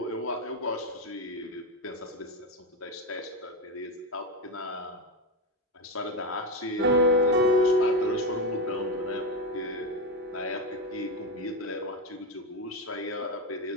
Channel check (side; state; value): both; normal; correlation 0.11